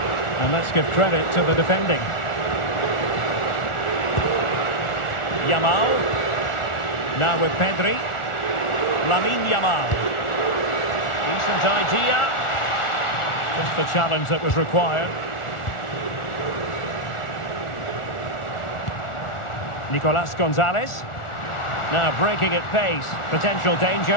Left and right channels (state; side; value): late; right; 1.4 ms